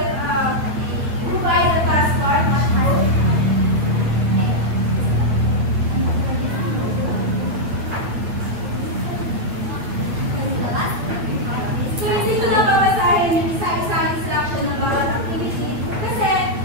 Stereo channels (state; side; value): late; left; 9.0 ms